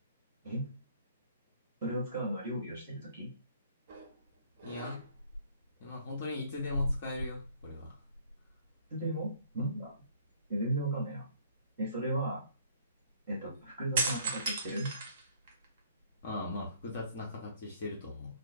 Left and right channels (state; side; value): inverted; both; correlation -0.59